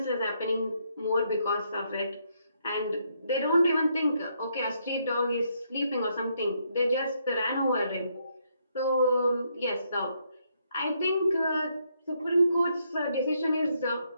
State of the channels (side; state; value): both; inverted; correlation -0.75